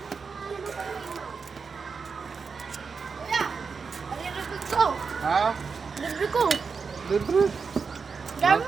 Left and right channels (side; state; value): left; quieter; 5.3 dB